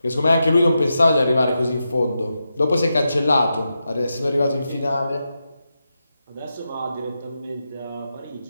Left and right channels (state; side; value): inverted; both; correlation -0.88